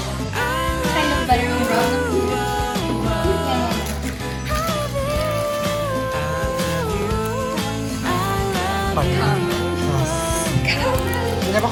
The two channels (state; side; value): identical; both; correlation 1.00